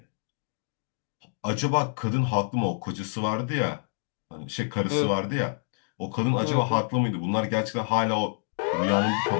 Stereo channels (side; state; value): right; silent; digital silence